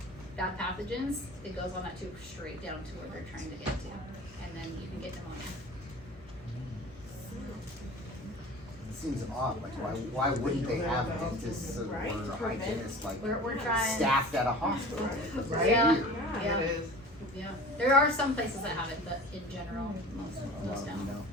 bad pathogens, it goes on that tube straight down to where they're trying to get to, and then you can get pneumonia. It seems odd, like why wouldn't they have dentists or hygienists like We're trying. staffed at a hospital? Right? Yeah. Weird. Yeah. It is. Yeah, there are some places that have it, but in general, most don't. No.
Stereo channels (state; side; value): normal; both; correlation 0.40